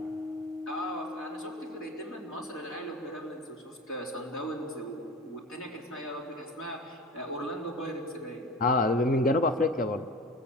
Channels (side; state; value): both; normal; correlation 0.34